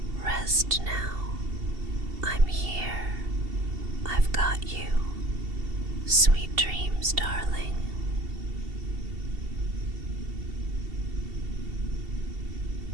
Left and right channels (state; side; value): late; left; 2.7 ms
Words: Rest now. I'm here. I've got you. Sweet dreams, darling.